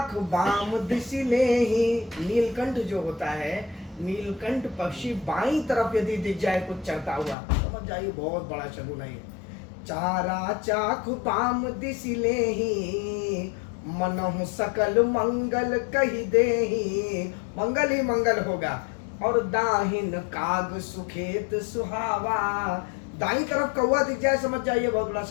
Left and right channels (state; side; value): drops out; right; at 7.4 s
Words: बाम दिशी ने ही। नीलकंठ जो होता है, नीलकंठ पक्षी बाईं तरफ यदि दिख जाए कुछ चढ़ता हुआ, समझ जाइए बहुत बड़ा शगुन है। चारा चाक बाम दिशी ले ही, मनहु सकल मंगल कही दे ही। मंगल ही मंगल होगा। और दाहिन काग सुखेत सुहावा, दाई तरफ कौवा दिख जाए समझ जाइए बहुत बड़ा